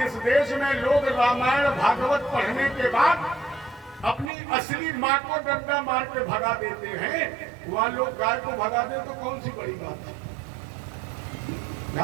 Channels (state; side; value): drops out; left; at 4.3 s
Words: देश में लोग रामायण भागवत पढ़ने के बाद अपनी असली माँ को डंडा मार के भगा देते हैं, वहां लोग गाय को भगा दे तो कौन सी बड़ी बात है।